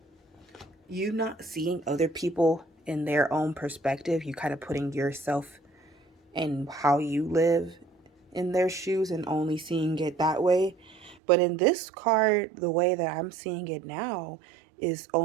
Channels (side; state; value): left; drops out; at 11.2 s